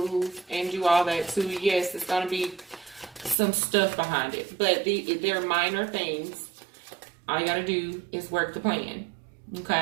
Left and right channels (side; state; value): left; drops out; at 3.4 s